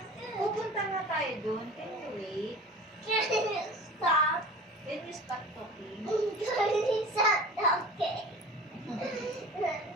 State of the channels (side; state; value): both; normal; correlation 0.38